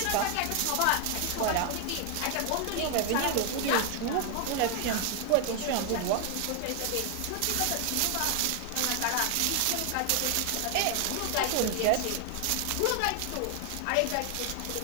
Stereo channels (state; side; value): different; both; correlation 0.00